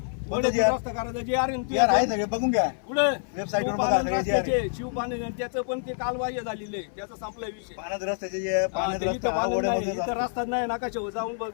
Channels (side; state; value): right; silent; 57 dB below the other